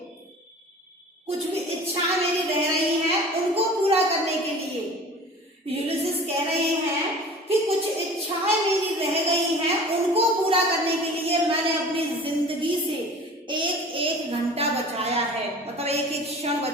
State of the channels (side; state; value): both; normal; correlation 0.42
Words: कुछ भी इच्छा मेरी रह रही है उनको पूरा करने के लिए यूलिसिस कह रहे हैं कि कुछ इच्छाएं मेरी रह गई हैं, उनको पूरा करने के लिए मैंने अपनी जिंदगी से एक घंटा बचाया है, मतलब एक एक क्षण